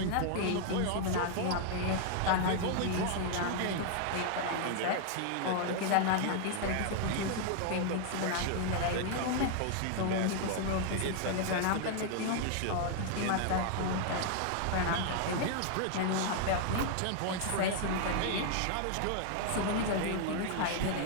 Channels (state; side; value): different; both; correlation 0.00